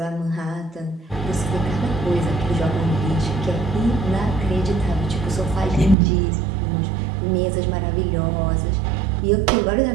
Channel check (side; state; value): left; drops out; at 6.0 s